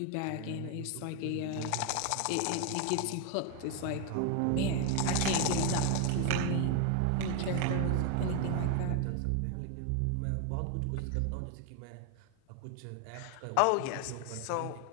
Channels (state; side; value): different; both; correlation 0.01